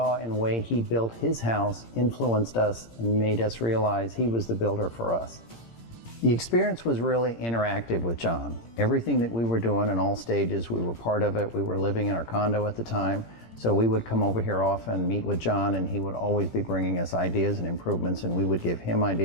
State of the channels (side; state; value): right; late; 17 ms